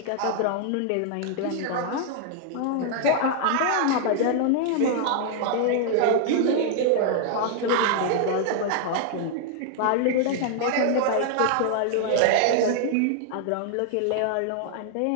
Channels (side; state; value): both; different; correlation -0.01